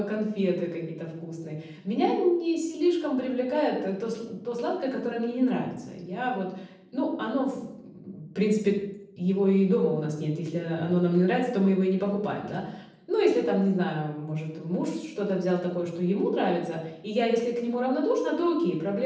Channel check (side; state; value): both; identical; correlation 1.00